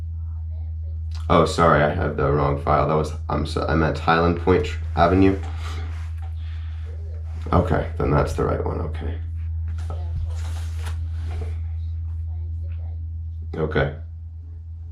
Oh, sorry, I have the wrong file. That was, I'm at Highland Point Avenue. Okay, then that's the right one, okay. Okay.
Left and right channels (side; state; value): both; identical; correlation 1.00